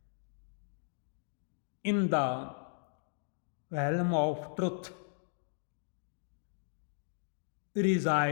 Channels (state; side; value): silent; right; digital silence